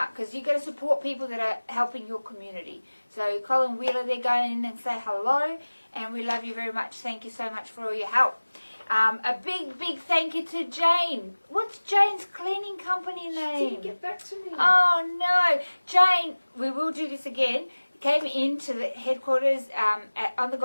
because you've got to support people that are helping your community. So Colin Wheeler, they're going in and say hello, and we love you very much. Thank you so much for all your help. A big thank you to Jane. What's Jane's cleaning company name? She didn't get back to me. Oh no, Jane, we will do this again. Came into the headquarters on the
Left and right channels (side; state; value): both; inverted; correlation -1.00